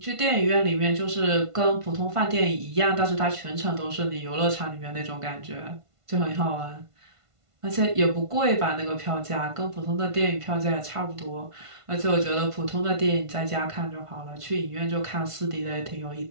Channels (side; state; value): left; late; 1.5 ms